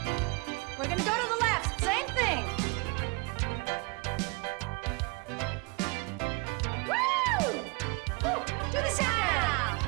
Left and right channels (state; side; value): quieter; left; 29.6 dB